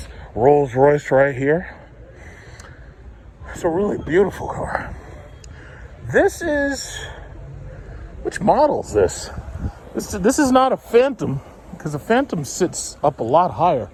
Rolls Royce right here. It's a really beautiful car. This is, which model is this? This is not a Phantom, because a Phantom sits up a lot higher.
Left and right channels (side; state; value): both; identical; correlation 1.00